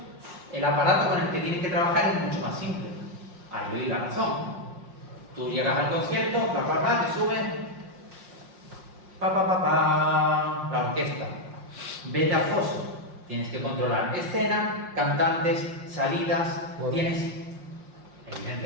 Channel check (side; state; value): left; late; 5.6 ms